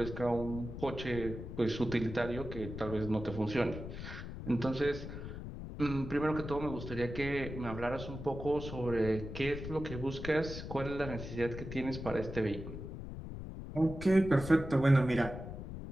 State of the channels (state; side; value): noise; left; rumble, 9 dB below the sound